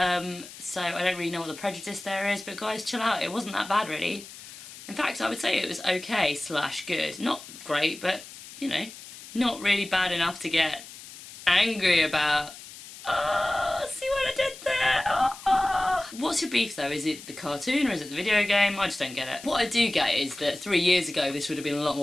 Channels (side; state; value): left; noise; hiss, 16 dB below the sound